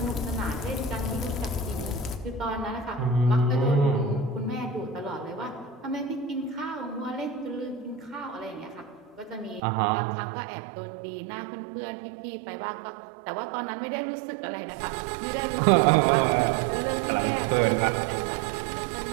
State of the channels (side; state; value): left; drops out; at 9.6 s